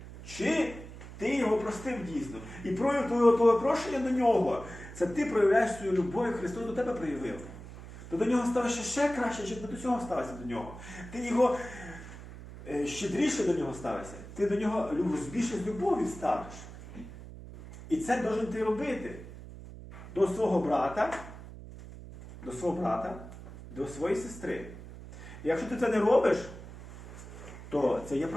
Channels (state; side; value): noise; right; hum, 14 dB below the sound